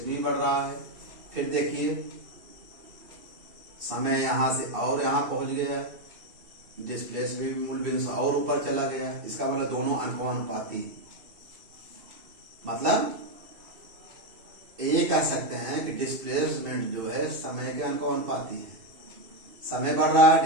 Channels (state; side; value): late; left; 2.7 ms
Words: भी बढ़ रहा है। फिर देखिए समय यहाँ से और यहाँ पहुंच गया, डिस्प्लेसमेंट भी मूल बिंदु से और ऊपर चला गया। इसका मतलब दोनों अनुपाती, मतलब ये कह सकते हैं कि डिस्प्लेसमेंट जो है समय के अनुपाती है। समय बढ़ रहा है,